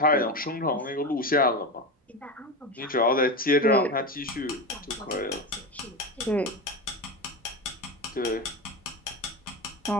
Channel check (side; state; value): both; normal; correlation 0.19